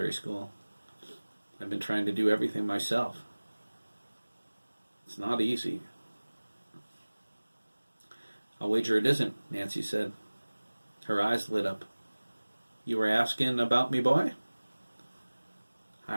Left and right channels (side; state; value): both; inverted; correlation -1.00